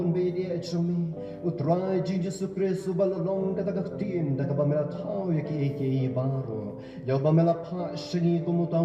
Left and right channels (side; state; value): both; identical; correlation 1.00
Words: bedi echumi. Utrai jing Jesu Kristu balalong ka takaktin da ka bamela tau yaki eke baro. Yaw bamela pa shini